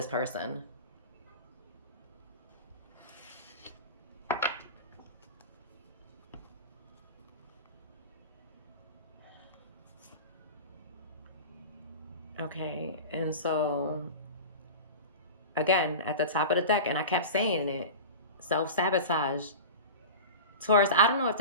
person. Okay, and so again, at the top of the deck, and I kept saying it, self-sabotage. Taurus, I don't know if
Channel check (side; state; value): both; inverted; correlation -0.31